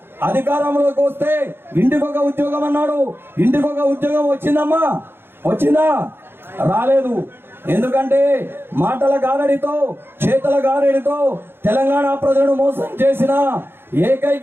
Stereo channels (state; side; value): late; left; 0.11 ms